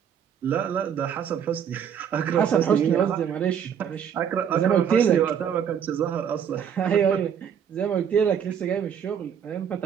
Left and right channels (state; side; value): quieter; left; 8.2 dB